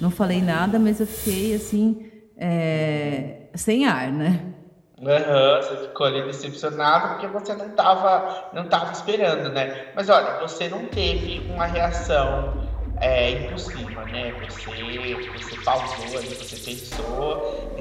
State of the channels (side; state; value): both; identical; correlation 1.00